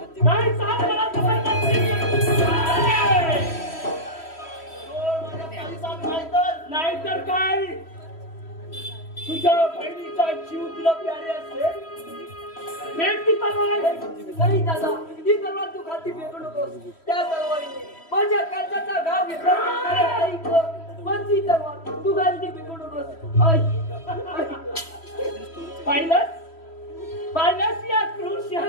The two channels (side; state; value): right; late; 3.1 ms